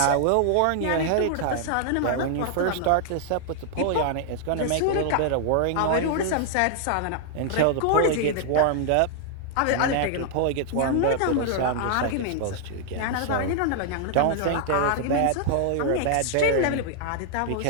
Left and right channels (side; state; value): both; different; correlation 0.00